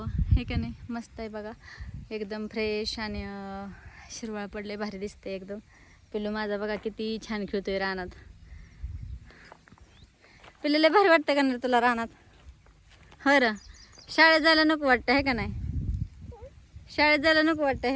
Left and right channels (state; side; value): identical; both; correlation 1.00